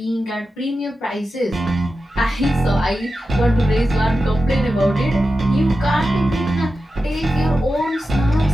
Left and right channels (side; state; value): both; normal; correlation 0.91